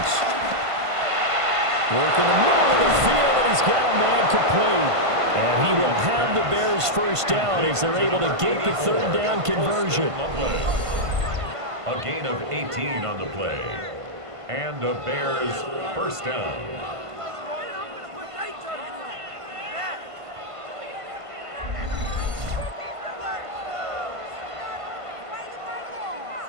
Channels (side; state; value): left; late; 1.5 ms